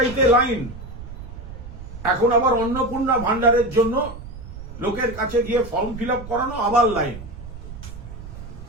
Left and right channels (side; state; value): right; noise; rumble, 12 dB below the sound